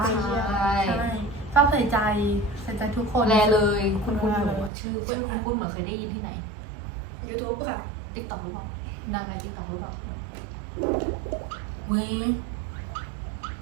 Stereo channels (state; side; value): drops out; left; at 4.7 s